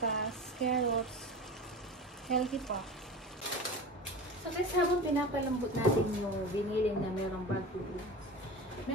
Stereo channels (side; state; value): both; normal; correlation 0.32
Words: carrots, healthy pa. So guys, habang pinapalambot natin yung giniling na merong bagu beans,